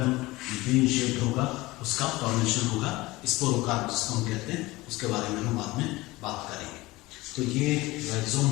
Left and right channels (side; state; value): right; quieter; 20.3 dB